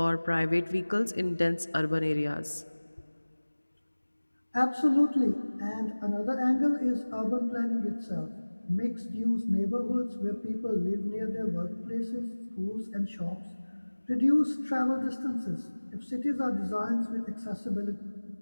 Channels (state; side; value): inverted; both; correlation -1.00